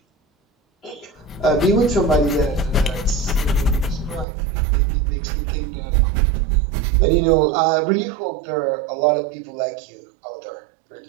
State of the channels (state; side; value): drops out; left; at 4.2 s